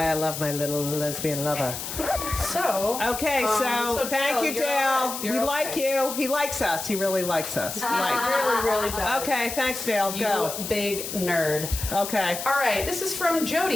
I love my little lesbian lover. So. Okay, so thank Dale, you, you're Dale. all right. We You're like okay. you. He likes us. He really likes us. Really, really does. Okay, thanks, Dale. You Go. big nerd. Okay. All right, this is from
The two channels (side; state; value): left; noise; hiss, 7 dB below the sound